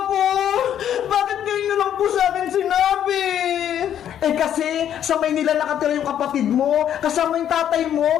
Bakit ngayon nyo lang po sa akin sinabi? Eh kasi, sa Maynila nakatira yung kapatid mo, kasama yung tatay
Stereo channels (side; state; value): right; quieter; 10.1 dB